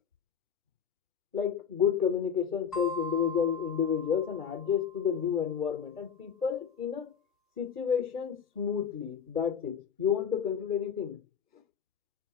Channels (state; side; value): quieter; right; 7.4 dB